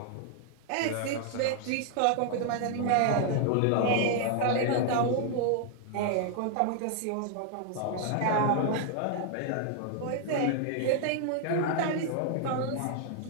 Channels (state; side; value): different; both; correlation 0.00